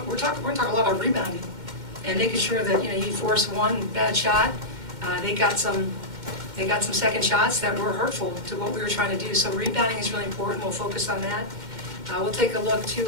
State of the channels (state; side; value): late; left; 2.1 ms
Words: we're going to talk a lot about rebounding and making sure that, you force one bad shot. They got some second shots that were hurtful to what we were trying to do. So rebounding is really important. We'll focus on that. We'll take a look, too,